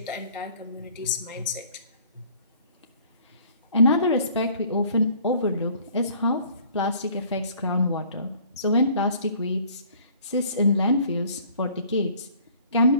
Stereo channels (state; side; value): inverted; both; correlation -0.55